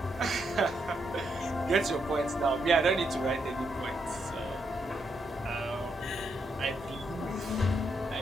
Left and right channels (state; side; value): normal; both; correlation 0.79